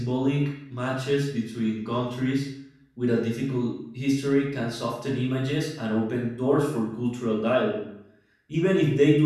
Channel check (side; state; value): both; identical; correlation 1.00